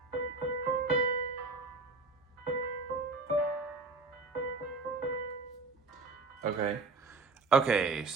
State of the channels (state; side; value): quieter; left; 3.7 dB